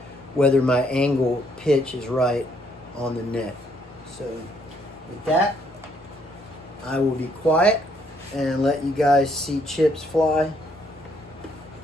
whether my angle pitch is right on the neck. So with that, I will be quiet and let you guys see chips fly,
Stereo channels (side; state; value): both; normal; correlation 0.69